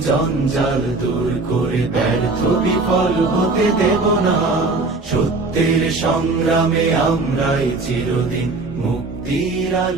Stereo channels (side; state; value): left; quieter; 3.5 dB